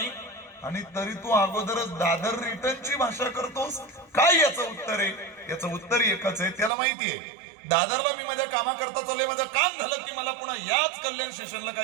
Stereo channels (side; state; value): left; drops out; at 6.7 s